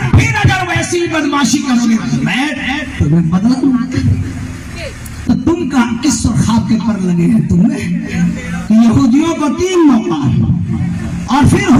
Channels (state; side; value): identical; both; correlation 1.00